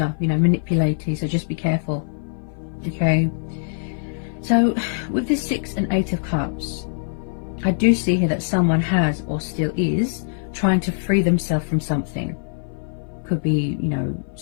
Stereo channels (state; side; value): silent; right; 57 dB below the other